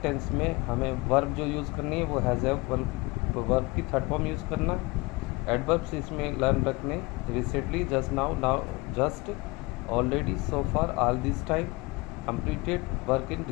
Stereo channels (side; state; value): right; quieter; 24.6 dB